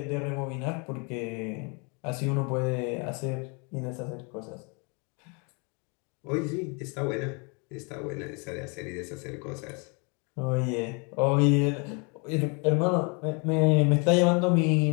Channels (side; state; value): right; quieter; 33.3 dB